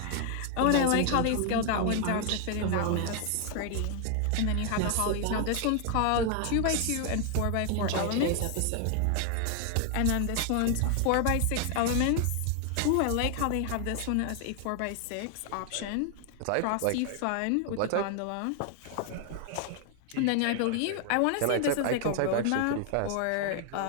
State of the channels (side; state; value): both; different; correlation 0.00